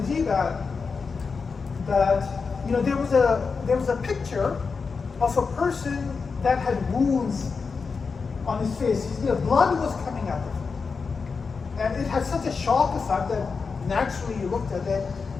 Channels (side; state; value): right; quieter; 5.0 dB